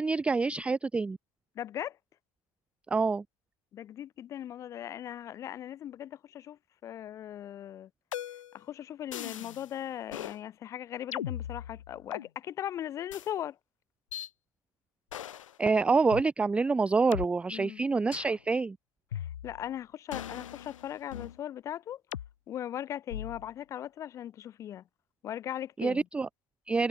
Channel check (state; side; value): normal; both; correlation 0.76